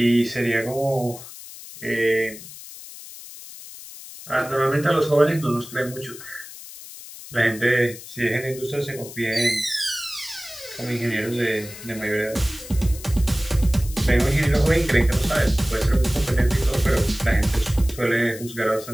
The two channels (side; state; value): left; noise; hiss, 15 dB below the sound